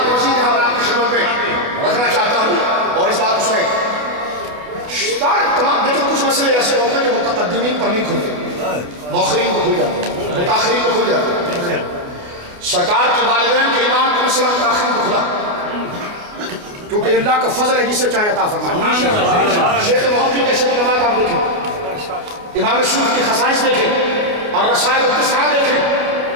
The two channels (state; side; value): late; left; 29 ms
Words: مزید یہاں پر آپ کی خدمت میں رکھنا چاہتا ہوں اور اس بات کو سنیں. تمام دیکھیں کچھ مسئلے ایسے ہوتے ہیں جو متقدمین پر نہیں کھلتے، مؤخرین کو کھل جاتے ہیں، متاخرین کو کھل جاتے ہیں. سرکار کے والدین کے ایمان کا مسئلہ متاخرین کو کھلا کیونکہ اللہ کا فضل ہے جسے چاہے عطا فرمائے. شیخ محقق کے شیخ نماز آپ دیکھیں، امام سیوطی کی خصائص دیکھیں اور رسائل التسعہ دیکھیں.